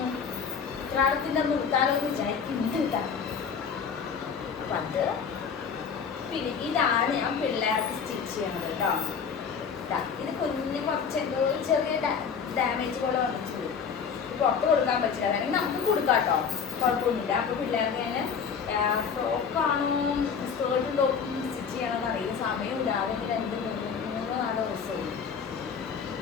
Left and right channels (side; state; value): right; quieter; 6.5 dB